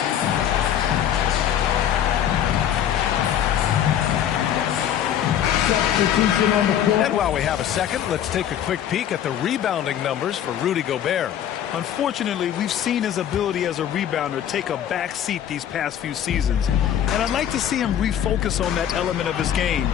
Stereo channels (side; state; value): right; quieter; 10.1 dB